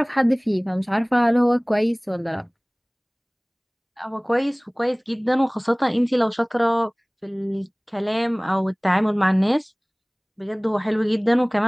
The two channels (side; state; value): both; identical; correlation 1.00